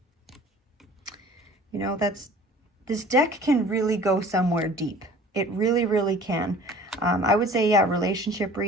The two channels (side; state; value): both; normal; correlation 0.47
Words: You know, this deck can really go somewhere deep. It really, really can. I would say, yeah, relationship